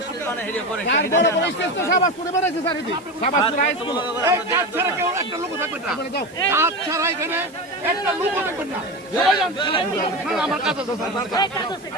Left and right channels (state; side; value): noise; right; hiss, 25 dB below the sound